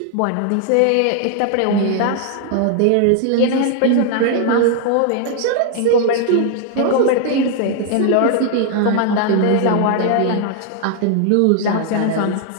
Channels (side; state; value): both; different; correlation 0.00